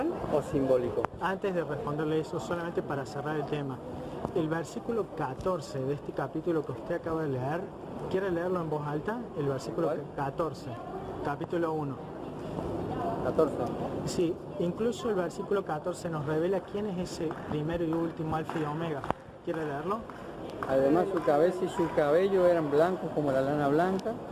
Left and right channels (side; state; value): both; identical; correlation 1.00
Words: o simbólico? Antes de responderle eso, solamente para cerrar el tema, el versículo 14 de este capítulo que usted acaba de leer, ¿quiere leerlo en voz alta? El versículo 14, capítulo 1. 14. Sí, incluso el versículo 14 nos revela quién es ese primero y último alfa y omega. ¿Quiere leerlo? Además su cabeza y su cabello eran blancos como la lana blanca,